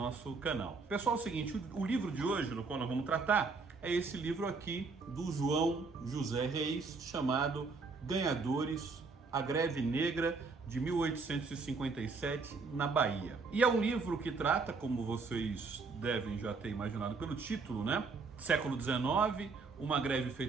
canal. Pessoal, é o seguinte, o livro de hoje, no qual nós vamos tratar, é esse livro aqui do João José Reis, chamado Ganhadores, a Greve Negra de 1857 na Bahia. E é um livro que trata, como vocês devem já ter imaginado pelo título, século XIX, uma greve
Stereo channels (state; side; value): quieter; left; 4.3 dB